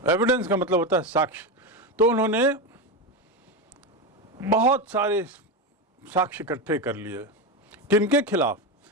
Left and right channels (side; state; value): both; normal; correlation 0.15